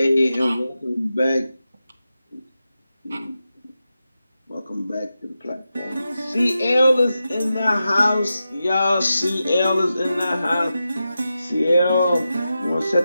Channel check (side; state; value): both; inverted; correlation -0.91